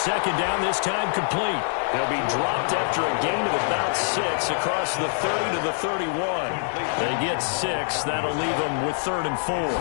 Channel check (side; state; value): right; silent; digital silence